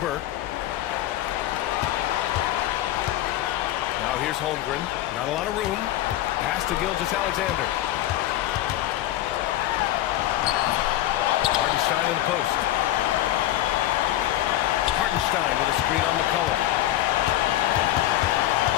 Now here's Holmgren. Not a lot of room. Pass to Gilgeous-Alexander. Hartenstein in the post. Hartenstein with a screen on McCollum.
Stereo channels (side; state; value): right; quieter; 14.0 dB